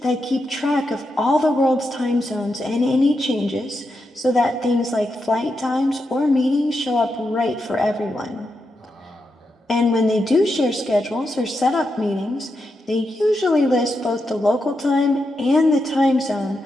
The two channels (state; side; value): normal; both; correlation 0.86